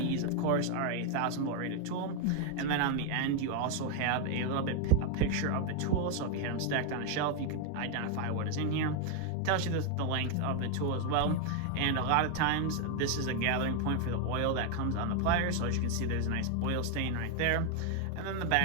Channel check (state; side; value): different; both; correlation 0.00